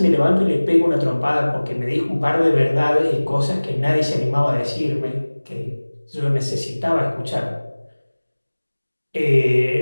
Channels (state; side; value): inverted; both; correlation -1.00